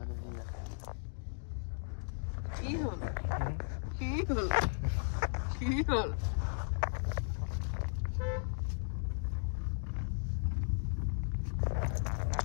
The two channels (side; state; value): right; silent; digital silence